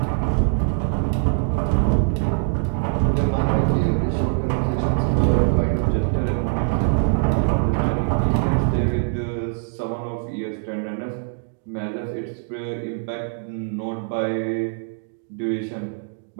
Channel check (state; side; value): silent; left; 64 dB below the other